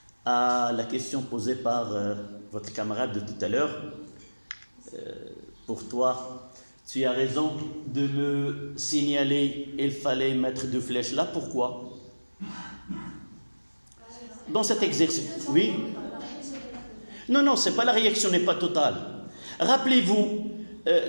à la question posée par votre camarade de tout à l'heure. Pour toi, tu as raison de me signaler, il fallait mettre deux flèches là. Pourquoi? Dans cet exercice, oui. Non, c'est pas la réaction n'est pas totale. Rappelez-vous,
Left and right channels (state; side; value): inverted; both; correlation -1.00